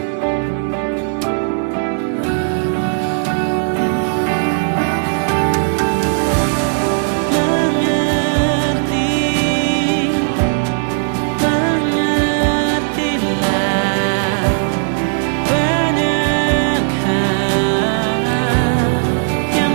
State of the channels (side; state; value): left; silent; digital silence